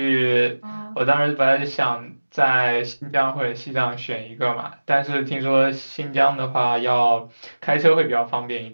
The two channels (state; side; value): inverted; both; correlation -1.00